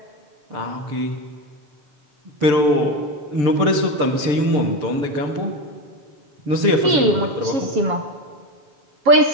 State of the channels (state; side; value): late; left; 7.2 ms